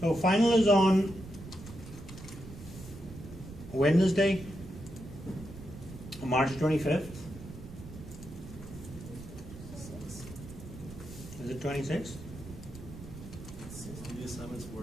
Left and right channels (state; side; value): noise; right; rumble, 13 dB below the sound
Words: So final is on Wednesday, March 25th. Is it 26th? The assignments